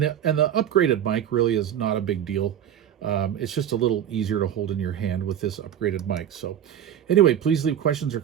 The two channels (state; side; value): quieter; left; 10.0 dB